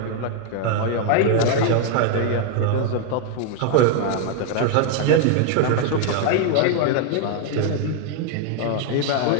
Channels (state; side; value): different; both; correlation 0.00